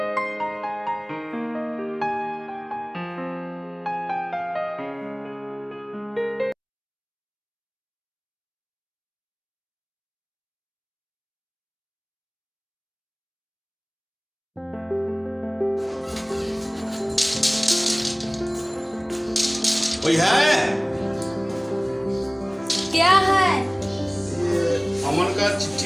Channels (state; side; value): identical; both; correlation 1.00